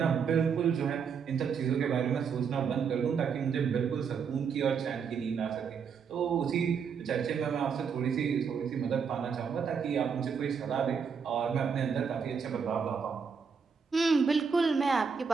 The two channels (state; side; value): quieter; left; 6.3 dB